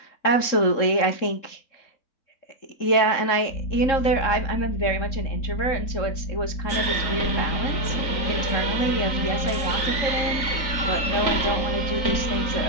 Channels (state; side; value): late; right; 3.7 ms